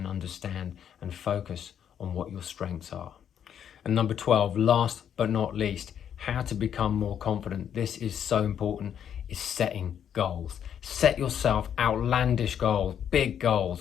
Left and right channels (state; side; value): quieter; right; 9.0 dB